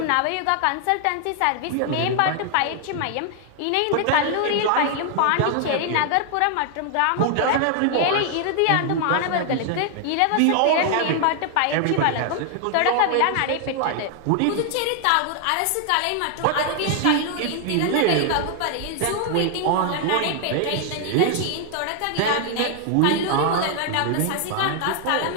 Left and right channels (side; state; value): both; different; correlation 0.00